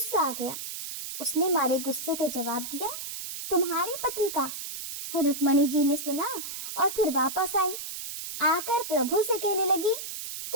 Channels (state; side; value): noise; right; hiss, 7 dB below the sound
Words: आ गया। उसने मारे गुस्से के जवाब दिया, तुम्हारे पति का। रुक्मणी जी ने सुना और फिर वापस आई, आकर प्रभु से कहने लगी